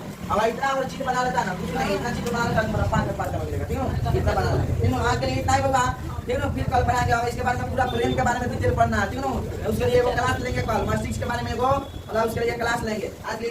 अब इतना और चीज बना लेता ना, कुछ नहीं, इतना चीज बना लेता तुम्हारा 5 में मिलेगा, ठीक है, इतना बना लेते, ठीक है, आज के लिए इतना ही होगा, ठीक है, फिर कल पढ़ाएंगे और इसके बारे में पूरा प्रेम के बारे में डिटेल पढ़ना है, ठीक है, उसके लिए वो क्लास लेंगे कल, मार्क्स 6 के बारे में वो और उसके लिए क्लास लेंगे। आज के लिए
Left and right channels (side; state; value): both; identical; correlation 1.00